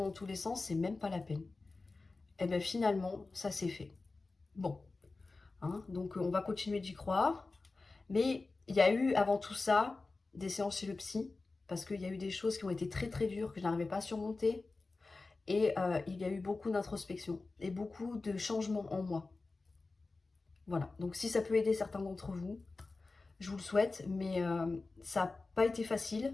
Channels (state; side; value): quieter; right; 3.6 dB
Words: dans tous les sens, c'est même pas la peine. Et bien finalement, ça s'est fait. Bon, hein, donc on va continuer d'y croire. Mais il y a eu avant tout ça des séances chez le psy, parce qu'il y a eu des choses qui ont été très très dures, que je n'arrivais pas à surmonter. Et il y a eu beaucoup d'introspection et beaucoup de changements en moi. Voilà, donc si ça peut aider certains d'entre vous, je vous le souhaite, mais ça n'a pas été